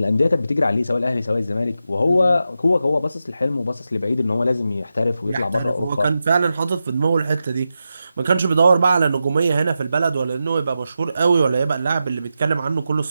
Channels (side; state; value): both; inverted; correlation -0.90